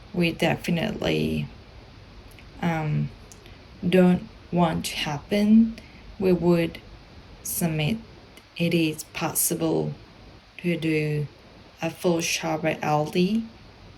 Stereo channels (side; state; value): both; identical; correlation 1.00